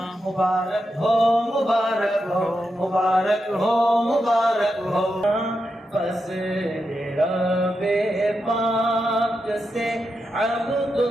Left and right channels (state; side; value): normal; both; correlation 0.87